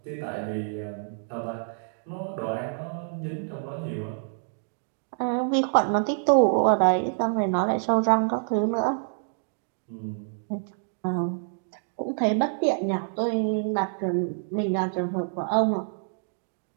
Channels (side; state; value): left; silent; digital silence